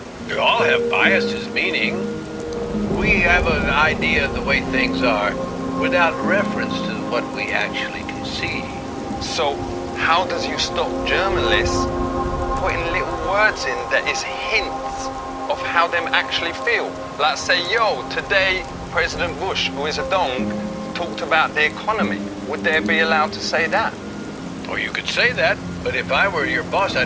We all have biases, meaning we have an idea of the way things are without reference to what we actually can see. So, how does you stop journalists putting little words in that is hints of how them actually feel? Like say, yo, today President Bush, who is a dong, talked about the economy. Would they be allowed to say that? Or you could say that, but if I were your boss,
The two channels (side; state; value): both; identical; correlation 1.00